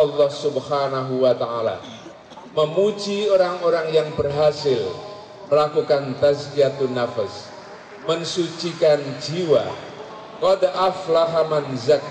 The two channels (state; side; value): identical; both; correlation 1.00